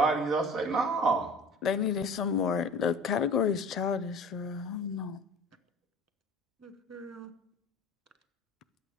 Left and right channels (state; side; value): normal; both; correlation 0.42